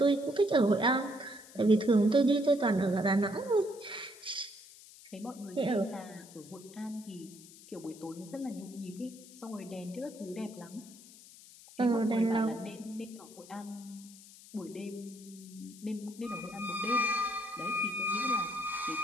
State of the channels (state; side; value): noise; left; hiss, 20 dB below the sound